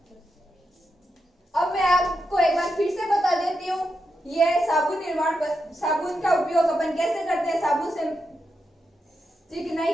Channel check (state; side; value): normal; both; correlation 0.85